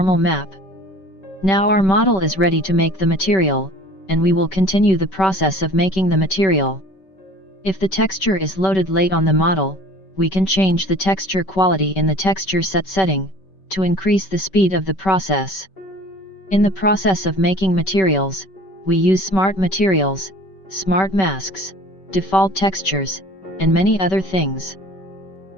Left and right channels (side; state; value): right; late; 5.2 ms